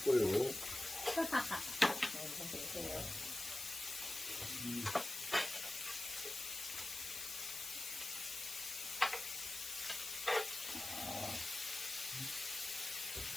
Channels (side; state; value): left; noise; hiss, 6 dB below the sound